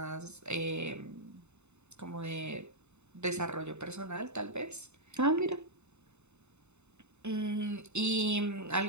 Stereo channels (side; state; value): left; late; 0.82 ms